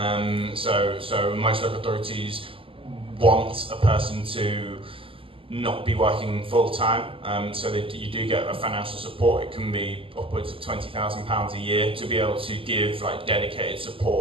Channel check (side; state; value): left; late; 0.26 ms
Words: So most local authorities want a person to not be working full time, so that you do get a financial support. It can be upwards of £20,000 a year to be able to give dedicated